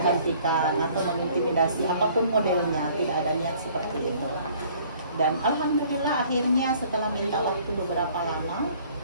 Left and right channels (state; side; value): inverted; both; correlation -0.56